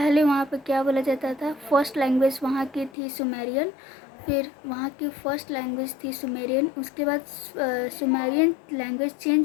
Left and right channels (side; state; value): right; drops out; at 2.9 s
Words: वहाँ पे क्या बोला जाता था? फर्स्ट लैंग्वेज वहाँ की थी सुमेरियन, फिर वहाँ की फर्स्ट लैंग्वेज थी सुमेरियन, उसके बाद सुमेरियन लैंग्वेज